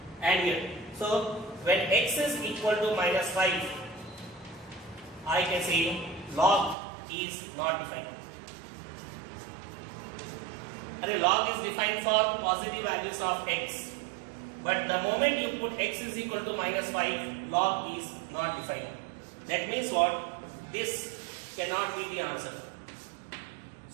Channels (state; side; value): drops out; left; at 6.8 s